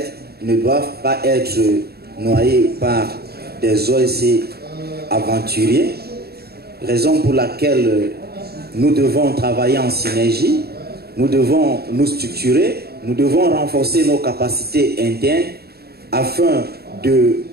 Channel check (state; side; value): late; left; 0.46 ms